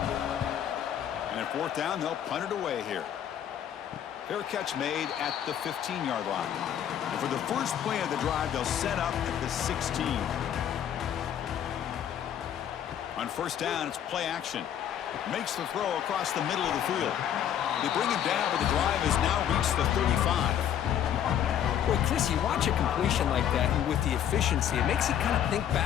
And at fourth down, they'll punt it away here. Fair catch made at the 15-yard line. And for the first play of the drive, they'll set up at the 16. On first down, it's play action. Makes the throw across the middle of the field. They bring him down, but the drive has now reached the 35. Boy, Chris, you watch a completion like that, and with the efficiency, it makes you kind of think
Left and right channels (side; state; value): right; quieter; 9.9 dB